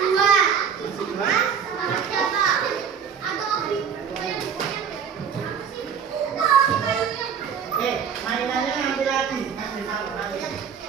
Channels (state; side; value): quieter; left; 7.3 dB